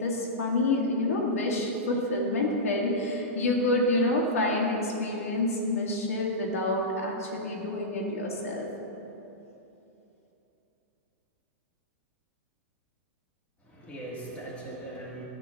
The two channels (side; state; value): both; normal; correlation -0.14